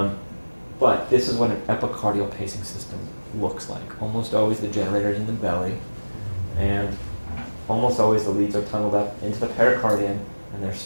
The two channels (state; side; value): inverted; both; correlation -1.00